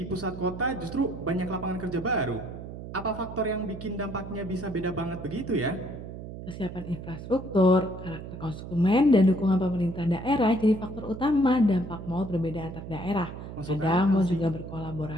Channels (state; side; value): noise; right; hum, 10 dB below the sound